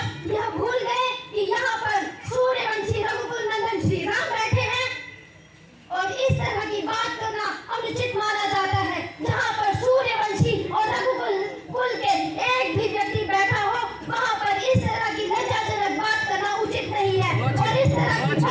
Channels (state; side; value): identical; both; correlation 1.00